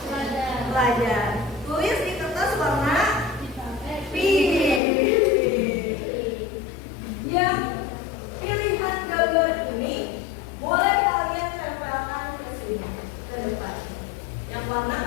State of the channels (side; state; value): right; drops out; at 4.8 s